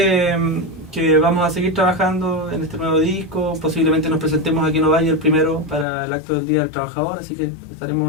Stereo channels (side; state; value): right; drops out; at 5.9 s